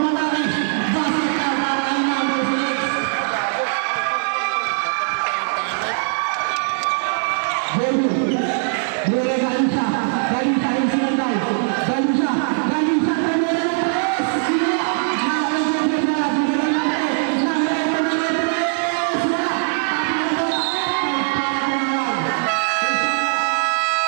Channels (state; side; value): silent; left; digital silence